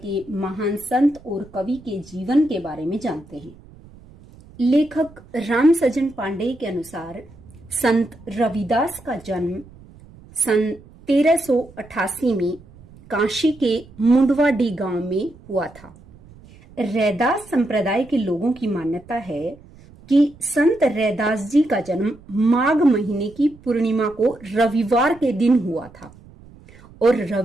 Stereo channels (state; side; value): noise; right; rumble, 23 dB below the sound